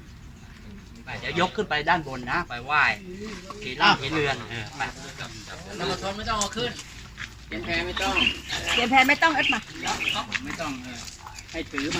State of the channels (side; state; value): both; identical; correlation 1.00